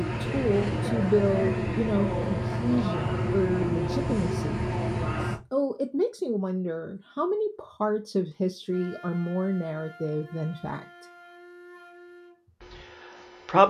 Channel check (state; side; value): identical; both; correlation 1.00